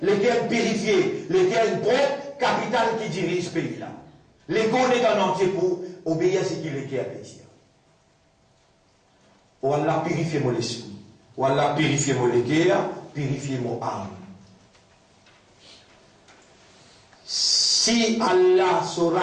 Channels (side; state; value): both; identical; correlation 1.00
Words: les guerres purifiées, les guerres propres, capitale qui dirige ce pays là. Les gars est en entier pour obéir à ce qui les guerres plaisir. Ou Allah purifie mon esprit. Ou Allah purifie mon guerre, purifie mon âme. Si Allah se